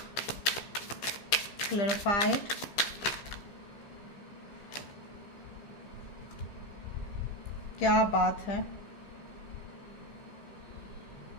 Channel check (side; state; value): right; late; 15 ms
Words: क्लैरिफाइड। क्या बात है।